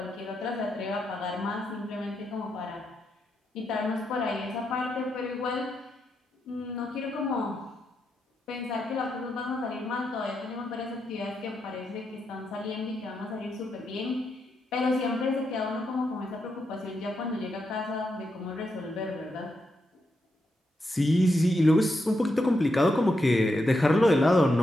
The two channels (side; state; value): both; normal; correlation 0.84